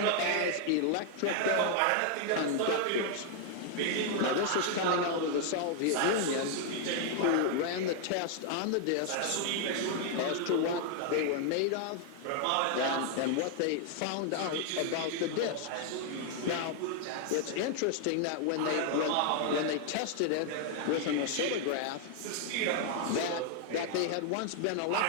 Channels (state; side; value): different; both; correlation 0.00